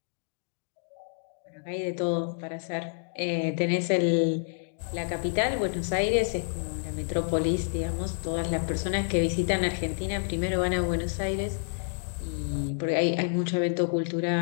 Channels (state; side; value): silent; right; digital silence